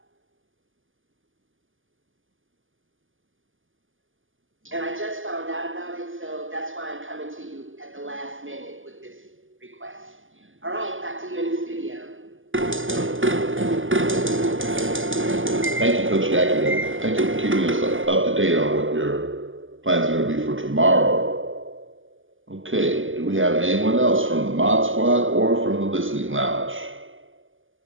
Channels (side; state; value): left; late; 0.58 ms